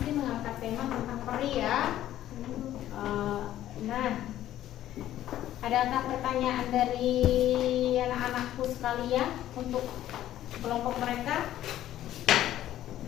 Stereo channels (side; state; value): right; quieter; 12.8 dB